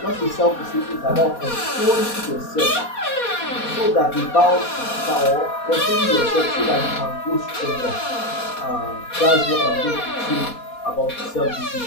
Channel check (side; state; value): right; late; 4.2 ms